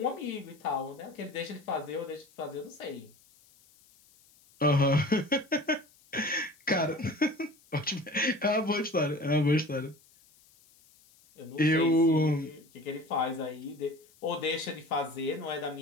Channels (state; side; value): noise; left; hiss, 29 dB below the sound